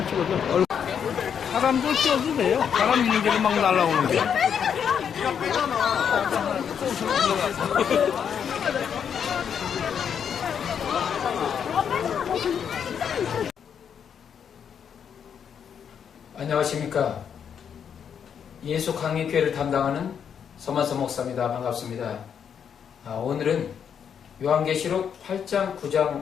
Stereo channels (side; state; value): right; quieter; 7.8 dB